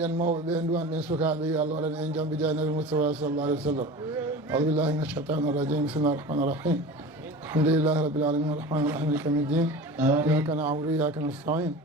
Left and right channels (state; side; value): normal; both; correlation 0.35